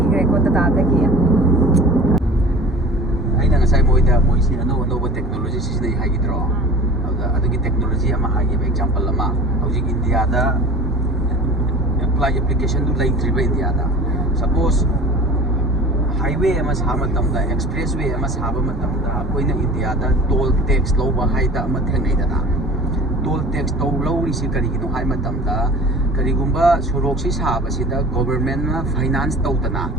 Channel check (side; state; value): both; normal; correlation 0.41